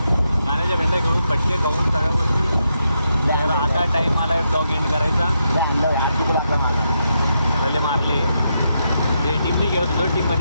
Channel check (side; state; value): both; inverted; correlation -0.82